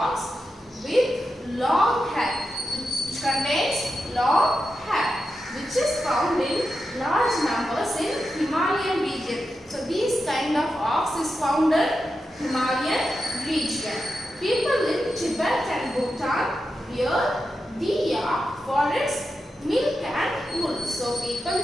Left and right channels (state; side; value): normal; both; correlation 0.89